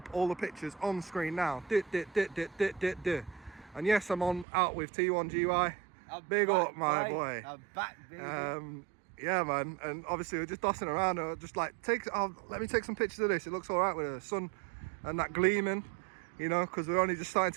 all the pictures on screen now. And yes, I'm out with T1GY. Big up, my boy. I'm back, baby. Yeah, man. And obviously we're just dossing around. Just like let me take some pictures of this. It looks all right with the sun and that gleaming, you know, because we're only just starting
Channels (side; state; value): left; drops out; at 4.5 s